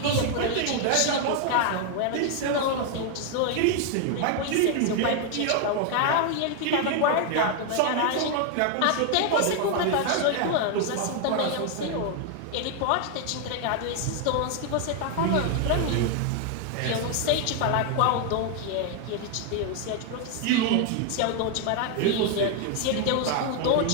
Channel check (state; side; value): different; both; correlation 0.00